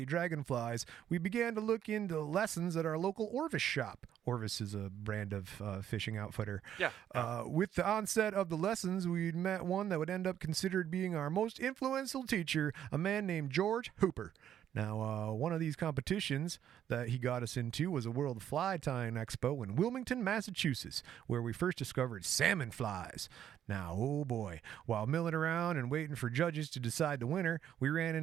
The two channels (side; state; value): left; quieter; 10.2 dB